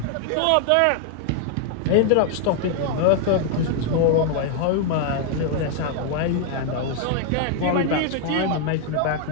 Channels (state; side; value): different; both; correlation 0.00